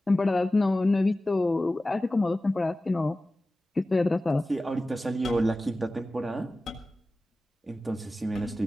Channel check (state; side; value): normal; both; correlation 0.96